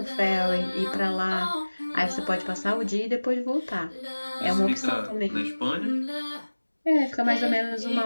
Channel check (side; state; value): both; inverted; correlation -1.00